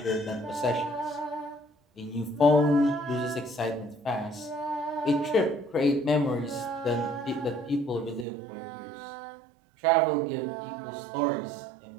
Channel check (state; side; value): drops out; left; at 8.2 s